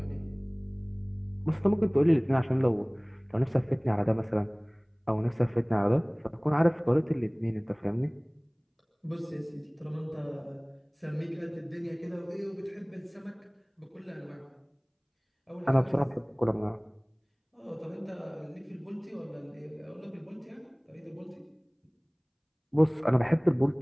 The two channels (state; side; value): identical; both; correlation 1.00